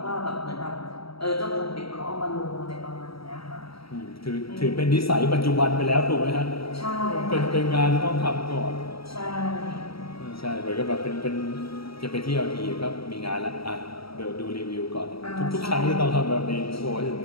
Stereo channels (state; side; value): late; right; 0.75 ms